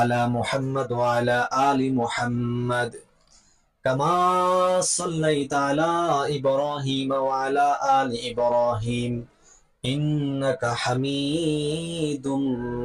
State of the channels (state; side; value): identical; both; correlation 1.00